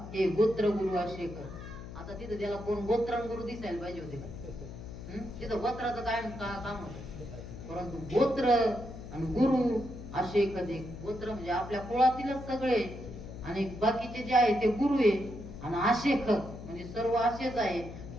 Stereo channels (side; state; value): left; noise; hum, 11 dB below the sound